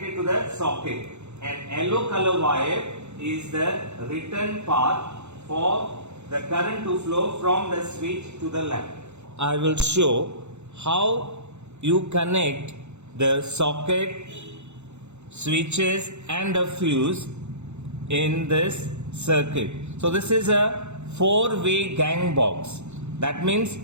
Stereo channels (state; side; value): late; left; 0.82 ms